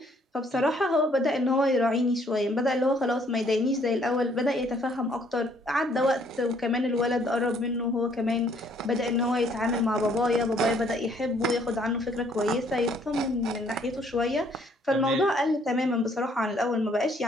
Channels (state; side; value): normal; both; correlation 0.64